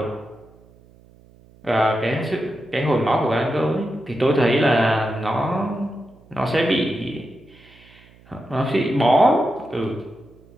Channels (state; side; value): noise; right; hum, 27 dB below the sound